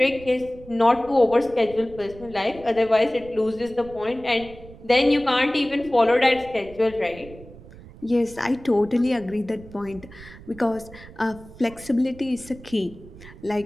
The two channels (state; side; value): noise; right; rumble, 19 dB below the sound